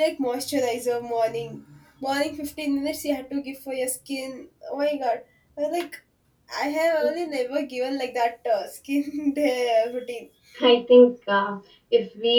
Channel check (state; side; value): identical; both; correlation 1.00